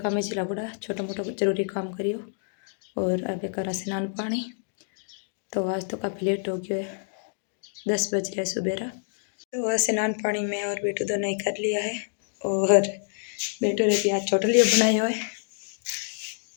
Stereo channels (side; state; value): right; silent; digital silence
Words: चिला बुढ़ा छोटा मोटा जरूरी काम करियो और अब करा स्नान पानी। तो आज तो काफ़ी लेट हो गया है, 10 बज रहे सुबह। तो स्नान पानी में और बेटू दोनों ही कर लिया है और बेटू ने प्याज छोटा लिया बनाया हुआ है।